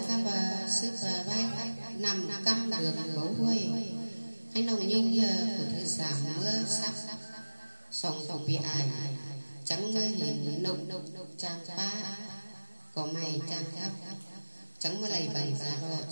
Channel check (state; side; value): inverted; both; correlation -1.00